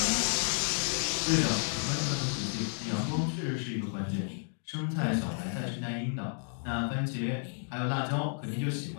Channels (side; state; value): right; silent; 57 dB below the other